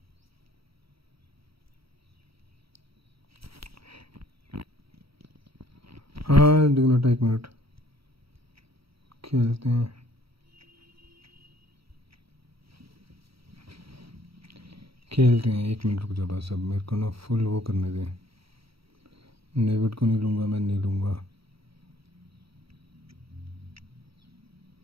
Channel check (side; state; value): left; late; 0.76 ms